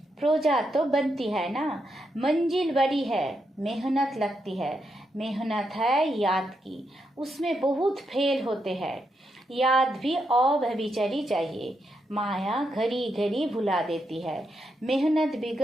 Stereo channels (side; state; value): both; normal; correlation 0.82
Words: प्रोजा तो बनती है ना, मंजिल बड़ी है, मेहनत लगती है। मेहनत है याद की, उसमें बहुत फेल होते हैं। याद भी अव्यभिचारी चाहिए। माया घड़ी घड़ी भुला देती है। मेहनत